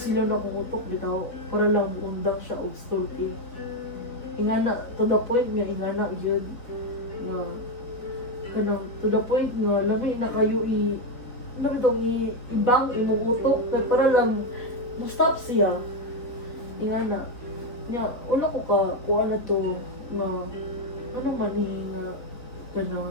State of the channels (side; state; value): right; late; 3.9 ms